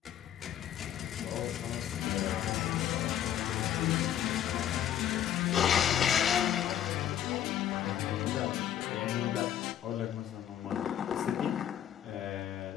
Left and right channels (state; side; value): quieter; right; 10.7 dB